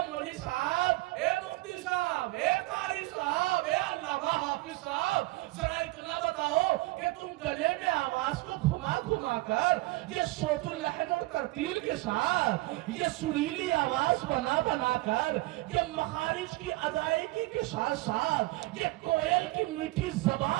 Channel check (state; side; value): quieter; left; 20.6 dB